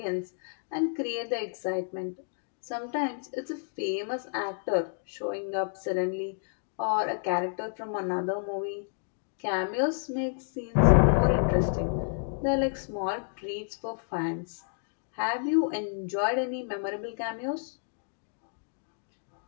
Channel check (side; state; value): right; silent; digital silence